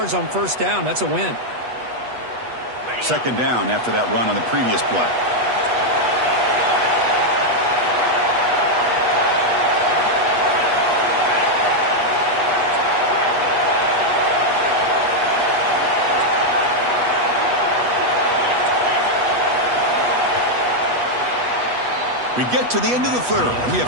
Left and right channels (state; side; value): late; left; 8.2 ms